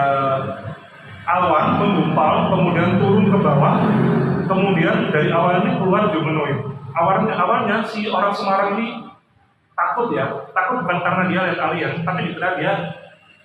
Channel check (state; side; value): identical; both; correlation 1.00